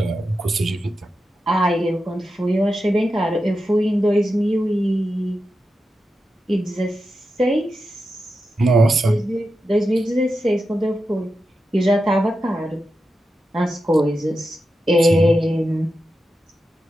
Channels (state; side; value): normal; both; correlation 0.90